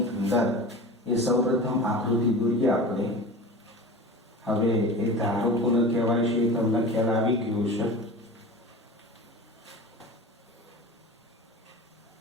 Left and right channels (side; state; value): both; normal; correlation 0.34